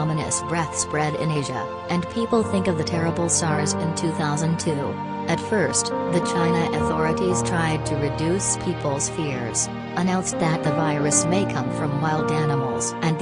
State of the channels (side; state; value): both; identical; correlation 1.00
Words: breath spread in Asia, and people think of the terrible SARS in 2002. At first, the China authorities tried to reduce people's fears, announced that the virus may come from wild animals and